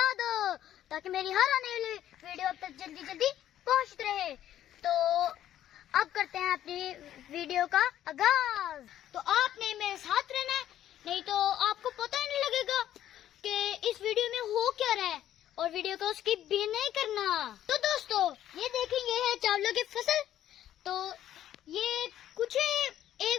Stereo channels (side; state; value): right; quieter; 11.8 dB